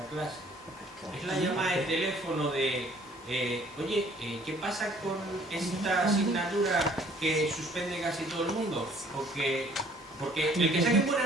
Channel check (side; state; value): both; normal; correlation 0.57